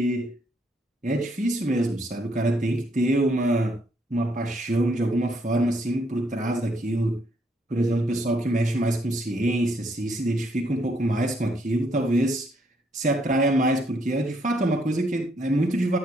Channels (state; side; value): normal; both; correlation 0.71